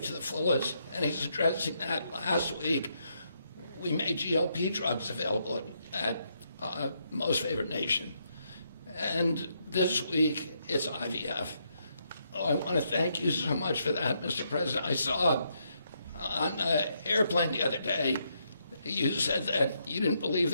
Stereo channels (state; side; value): inverted; both; correlation -0.77